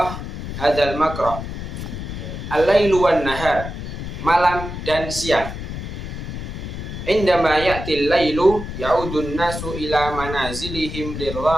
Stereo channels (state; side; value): noise; left; rumble, 7 dB below the sound